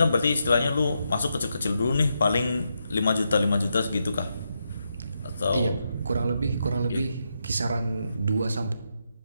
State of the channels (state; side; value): inverted; both; correlation -0.83